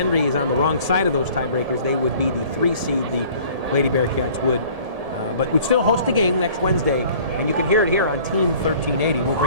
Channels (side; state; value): left; late; 1.7 ms